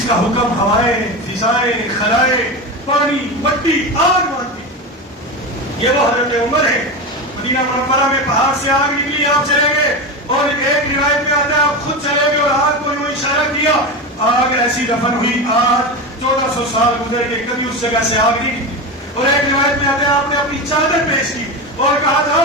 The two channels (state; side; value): normal; both; correlation 0.21